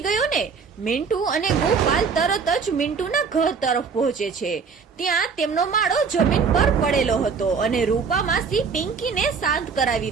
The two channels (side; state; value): left; quieter; 5.6 dB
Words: ગયો ને? મિન્ટુ અને ગોપાલ તરત જ મિન્ટુના ઘર તરફ પહોંચે છે. ત્યાં તેમનો માળો જમીન પર પડેલો હતો અને રૂપા માસી પિંકીને શાંત